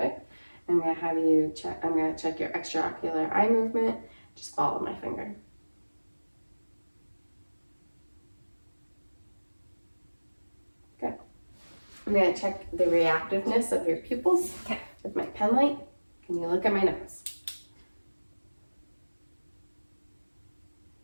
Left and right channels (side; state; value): both; inverted; correlation -1.00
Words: I'm going to have you check, I'm going to check your extraocular eye movement. Just follow my finger. Good. I'm going to check the reactiveness of your pupils with my pen light. Can you look at my nose?